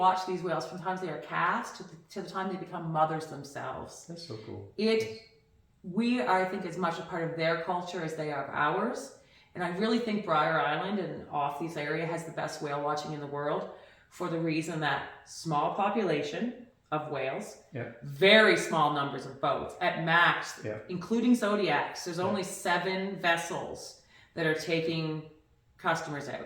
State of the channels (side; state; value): both; identical; correlation 1.00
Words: these whales from the time they are cast to the time they become mothers themselves. That's so cool. We are, I think, as much a part of their culture as they are of ours. And I really think Brier Island and off these area has the best whale watching in the world for the reason that small population of whales, very small numbers of boats, at max, including Zodiacs, there's only 7 vessels that are taking customers